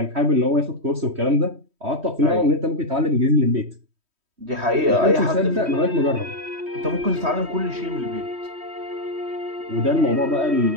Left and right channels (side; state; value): left; late; 3.1 ms